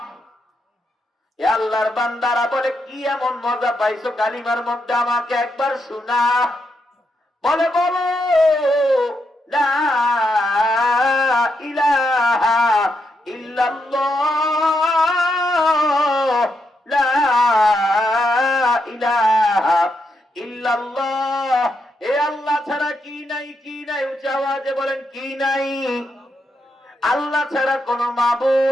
আল্লাহর বান্দারা বলে, কি এমন মজা পাইছো কালিমার মধ্যে, আমাকে একবার শোনা। বলে, বলো লা ইলাহা ইল্লাল্লাহ, লা ইলাহা ইল্লাল্লাহ। এ আল্লাহ ছাড়া কি নাই, কি নাই, উচ্চ আওয়াজে বলেন কি নাই। আল্লাহ ছাড়া কোন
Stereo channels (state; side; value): normal; both; correlation 0.82